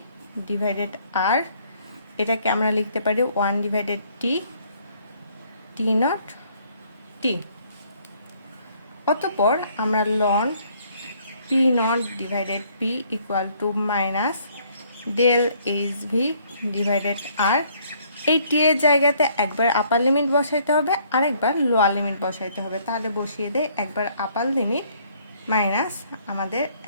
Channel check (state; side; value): inverted; both; correlation -0.64